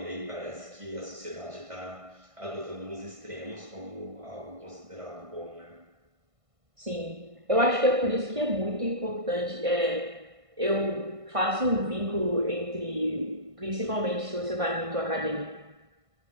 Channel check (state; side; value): late; left; 1.5 ms